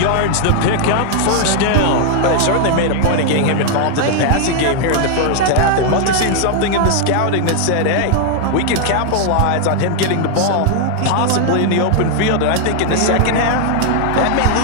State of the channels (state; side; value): different; both; correlation 0.00